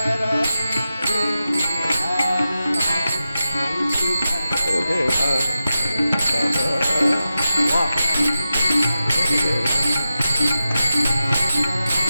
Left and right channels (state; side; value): inverted; both; correlation -0.91